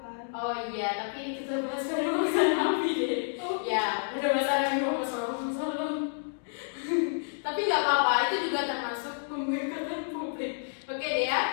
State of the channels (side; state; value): right; silent; digital silence